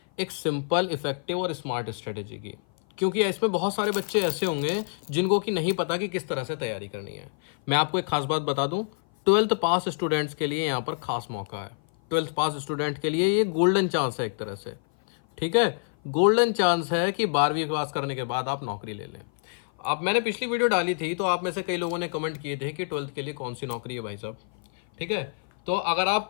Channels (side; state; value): right; silent; 56 dB below the other